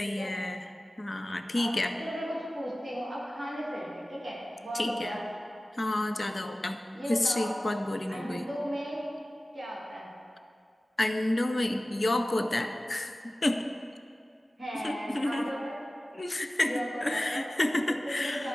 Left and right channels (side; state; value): both; normal; correlation 0.97